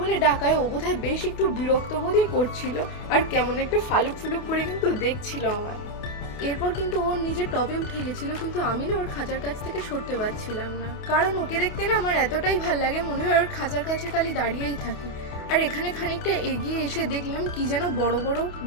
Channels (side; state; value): right; late; 28 ms